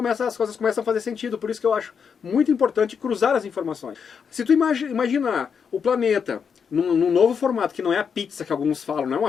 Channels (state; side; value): quieter; right; 6.6 dB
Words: as coisas começam a fazer sentido, por isso que eu acho muito importante cruzar as informações. Se tu imaginar o planeta num novo formato, que não é a pizza que alguns falam, não é